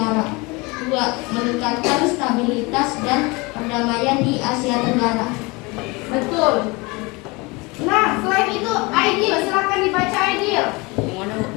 2. Meningkatkan stabilitas dan perdamaian di Asia Tenggara. Betul. Nah, selain itu, Aidil, silakan dibaca Aidil.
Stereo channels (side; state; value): right; quieter; 25.7 dB